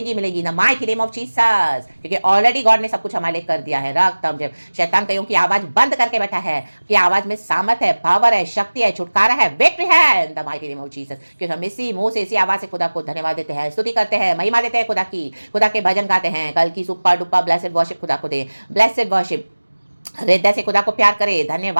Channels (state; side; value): inverted; both; correlation -1.00